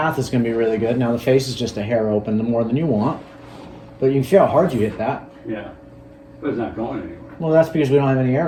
is going to be really good. Now the face is just a hair open, more than you want. But you can feel how hard you hit that. Yeah. But it's not going anywhere. Well, that's because we don't have any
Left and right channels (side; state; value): both; identical; correlation 1.00